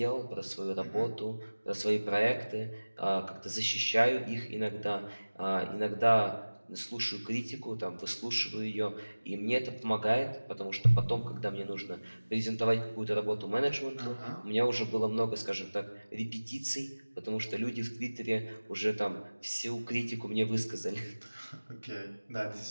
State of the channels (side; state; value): both; inverted; correlation -1.00